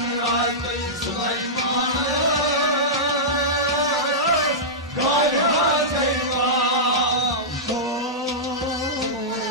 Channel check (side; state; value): both; normal; correlation -0.13